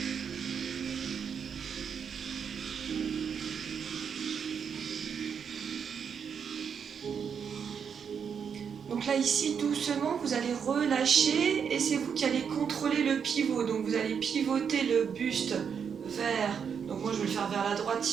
Donc là ici doucement vous allez relâcher et c'est vous qui allez contrôler le pivot. Donc vous allez pivoter le buste vers, donc moi je vais le faire vers la droite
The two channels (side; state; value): left; quieter; 7.0 dB